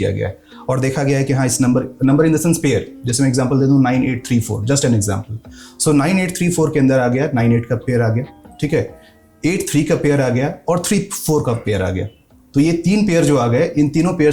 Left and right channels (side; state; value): both; identical; correlation 1.00